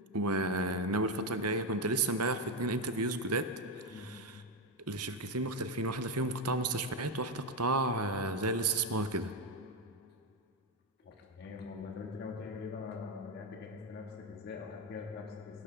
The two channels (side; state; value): both; normal; correlation 0.09